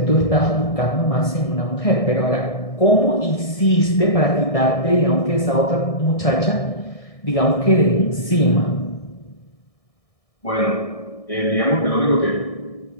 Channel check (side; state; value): right; late; 1.6 ms